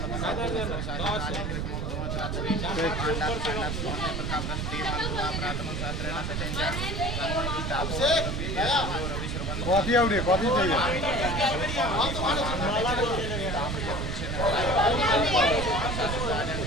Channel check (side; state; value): right; noise; rumble, 2 dB below the sound